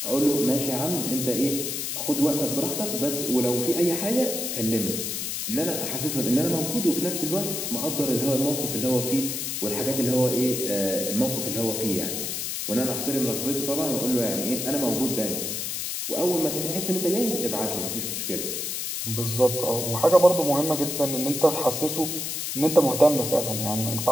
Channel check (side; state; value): left; noise; hiss, 3 dB below the sound